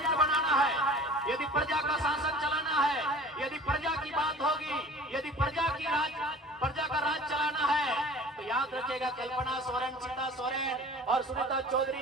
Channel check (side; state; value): both; normal; correlation 0.44